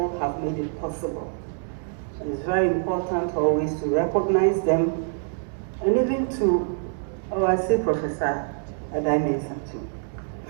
have made it possible. And it's very important always to recognize them and even to, I say Professor Adai too,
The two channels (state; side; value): silent; left; 60 dB below the other